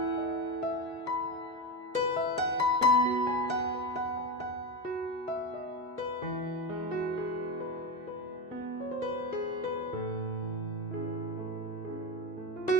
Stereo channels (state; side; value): normal; both; correlation 0.17